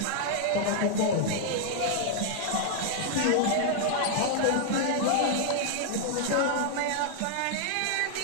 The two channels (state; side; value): different; both; correlation 0.00